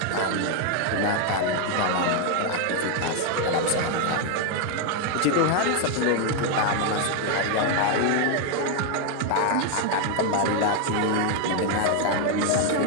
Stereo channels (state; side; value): different; both; correlation 0.01